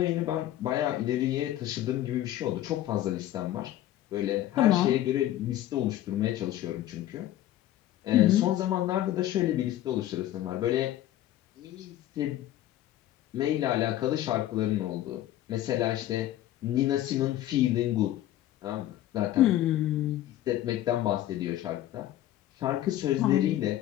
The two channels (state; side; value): quieter; right; 13.4 dB